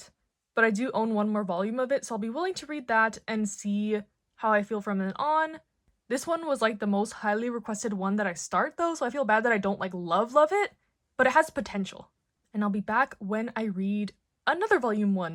but I do own 1 more volume of it, so I'll be willing to read that and see how I feel from then on. This one was like the most highly requested one that I start though, so I feel bad that I don't like love it, but it has potential. And I'll be back when I read another volume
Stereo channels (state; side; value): identical; both; correlation 1.00